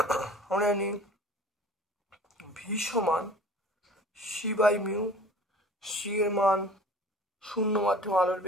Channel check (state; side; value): normal; both; correlation 0.45